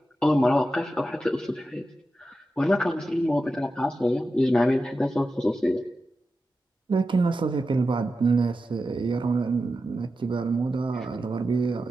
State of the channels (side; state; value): both; normal; correlation 0.91